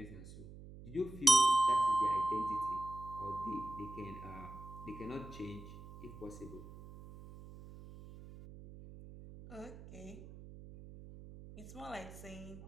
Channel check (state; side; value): noise; right; hum, 15 dB below the sound